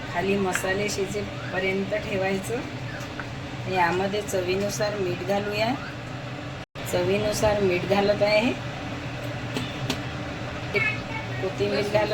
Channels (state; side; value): identical; both; correlation 1.00